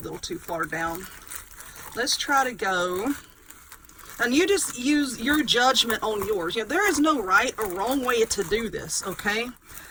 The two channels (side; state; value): both; identical; correlation 1.00